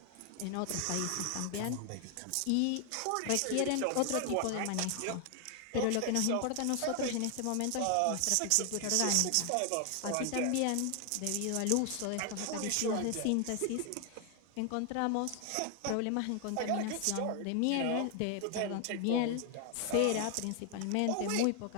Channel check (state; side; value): different; both; correlation 0.00